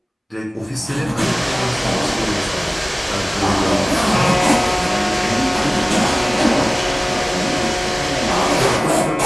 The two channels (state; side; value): normal; both; correlation 0.98